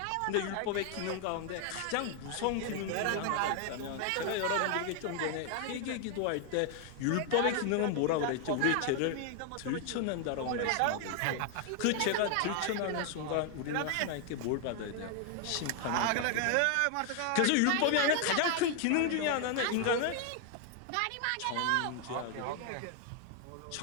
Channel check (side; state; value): both; different; correlation 0.00